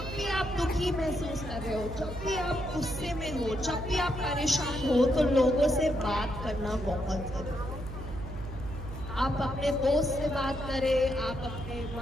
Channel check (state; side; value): noise; right; hum, 9 dB below the sound